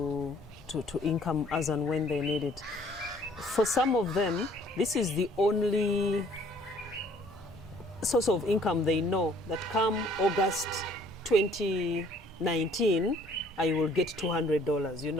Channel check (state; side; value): normal; both; correlation 0.58